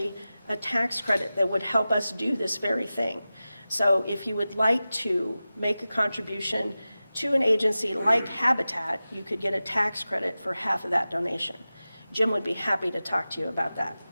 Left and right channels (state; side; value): inverted; both; correlation -0.95